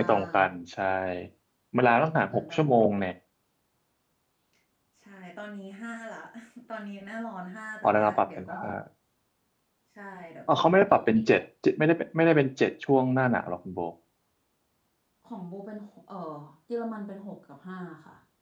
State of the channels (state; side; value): identical; both; correlation 1.00